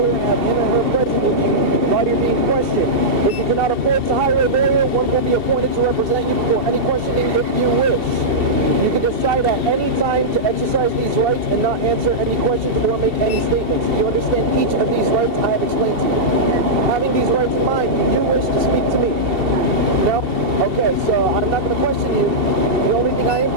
and have him or her present with you while you're being questioned. If you cannot afford to hire a lawyer, one will be appointed to represent you before any questioning if you wish. You can decide at any time to exercise these rights and not answer any questions or make any statements. Do you understand each of these rights I have explained to you? Having these rights in mind, do you wish to speak to me? No? Okay, so I'm not going to question you. The only thing I am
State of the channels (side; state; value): left; late; 2.7 ms